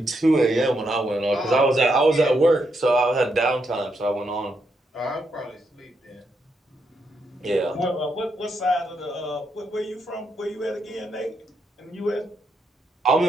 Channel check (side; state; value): both; normal; correlation 0.80